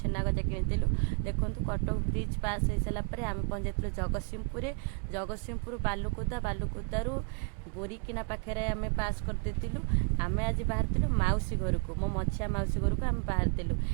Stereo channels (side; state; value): left; quieter; 38.9 dB